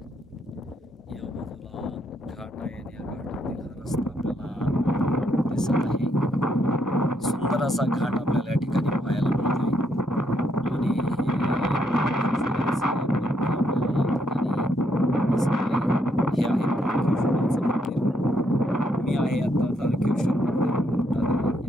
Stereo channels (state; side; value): normal; both; correlation 0.75